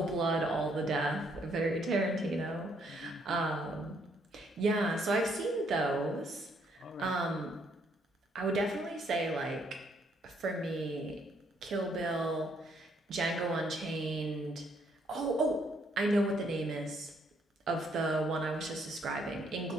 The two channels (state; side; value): normal; both; correlation 0.70